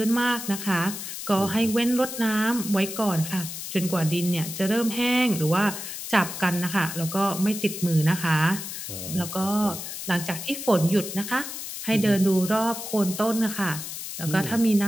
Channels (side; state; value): left; noise; hiss, 8 dB below the sound